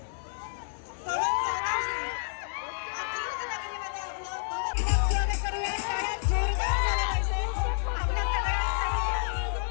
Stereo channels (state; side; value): silent; right; digital silence